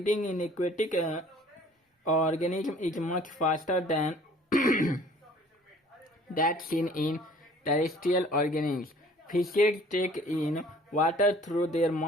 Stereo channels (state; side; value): normal; both; correlation 0.53